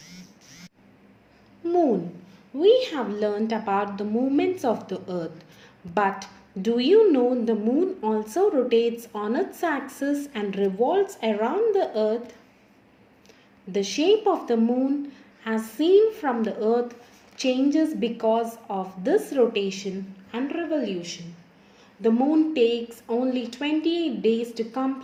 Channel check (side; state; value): both; identical; correlation 1.00